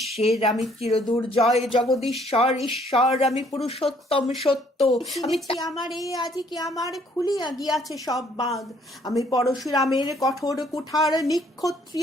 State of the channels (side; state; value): both; normal; correlation 0.63